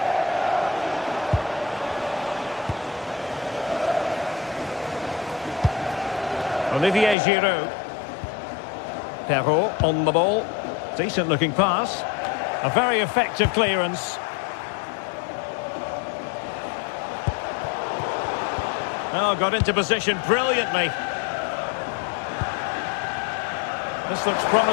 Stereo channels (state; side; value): drops out; right; at 7.2 s